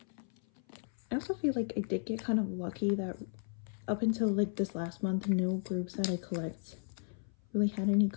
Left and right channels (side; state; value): right; silent; 55 dB below the other